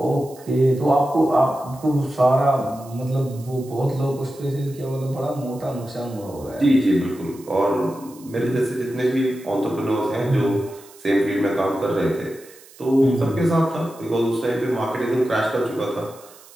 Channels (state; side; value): noise; right; hiss, 23 dB below the sound